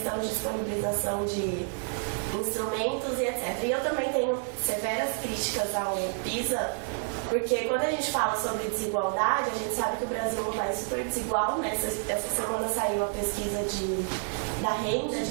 de disponibilização de instrumentos e etc. E eu também tenho severas críticas ao PISA, porque quando a gente fala sobre desigualdade, a gente sabe que o Brasil é um país super desigual, né? Essa semana saiu a pesquisa da renda de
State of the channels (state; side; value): silent; left; 58 dB below the other